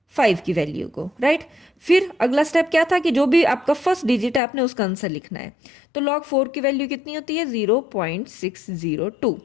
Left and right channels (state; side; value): drops out; right; at 4.4 s